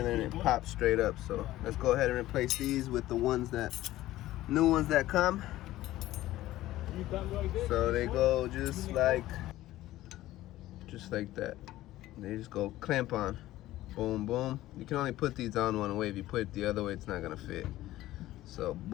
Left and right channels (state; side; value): quieter; right; 15.5 dB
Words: there and it pops straight up. So let's go ahead and replace these with the ones that, new ones that come. So they go just like that. They just go clamp on. Boom, boom. You can only put these on one way. If you put it the other way, it's not gonna fit. So